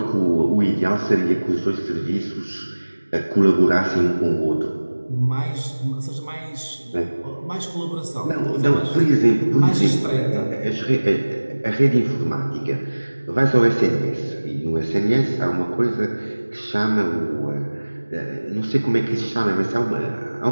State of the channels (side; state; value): both; inverted; correlation -1.00